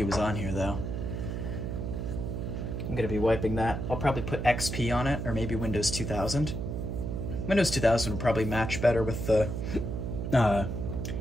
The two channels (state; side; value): noise; right; hum, 3 dB below the sound